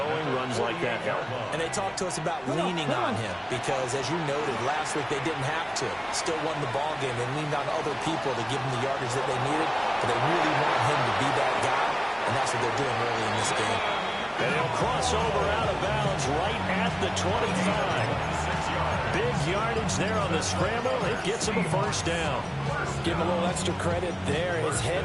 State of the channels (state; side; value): identical; both; correlation 1.00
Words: Runs like that help. And they talked to us about leaning on him because, as you noted, last week they didn't have to. Still won the ball game. They leaned on other people to give them the yardage that they needed. But they really want him to be that guy, and that's what they're doing early in this game. And he'll cross over out of bounds right at the 25. Big yardage there on the scramble. It gets him a first down. Give him a little extra credit there. His head